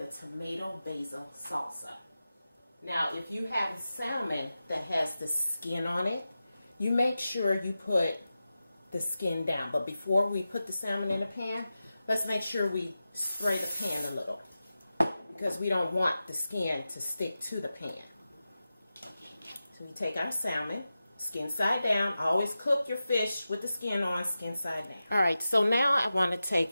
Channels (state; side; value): inverted; both; correlation -0.93